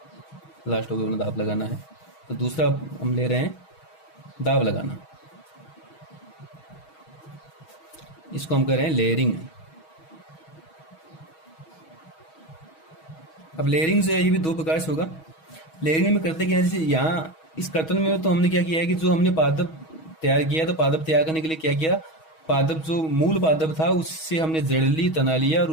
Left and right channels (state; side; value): late; right; 6.3 ms